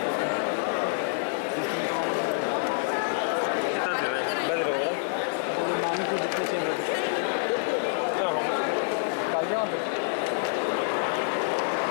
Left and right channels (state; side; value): silent; right; 58 dB below the other